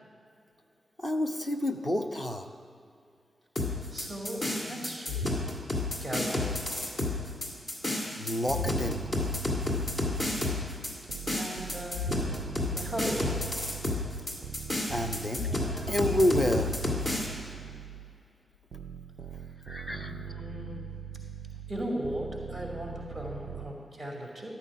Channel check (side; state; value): both; normal; correlation 0.69